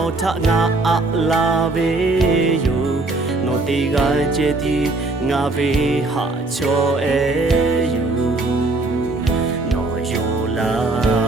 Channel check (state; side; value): quieter; left; 3.2 dB